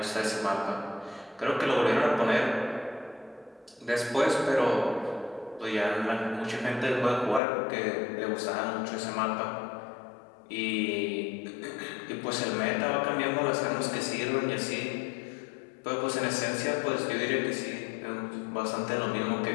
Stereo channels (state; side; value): drops out; right; at 7.4 s